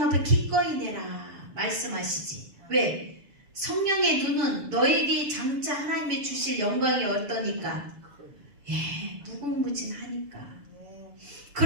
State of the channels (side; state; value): left; late; 7.0 ms